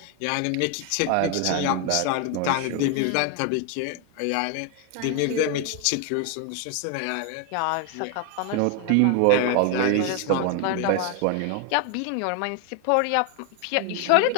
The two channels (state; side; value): different; both; correlation 0.01